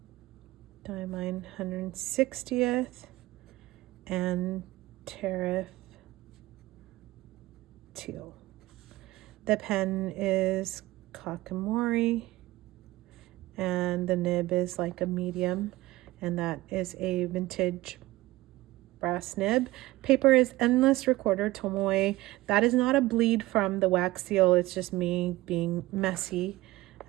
Diamine 160th and Tariff Teal. The pen is Kakamori, and the nib is like a medium, and that is a vintage brass nib. Paper is Endless Recorder Tomoe. That is not a bleed from the wax seal, it's just me being messy.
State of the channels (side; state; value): left; quieter; 18.4 dB